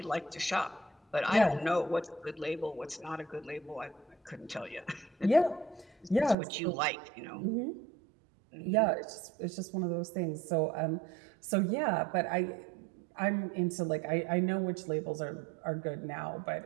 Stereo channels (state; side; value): drops out; left; at 6.4 s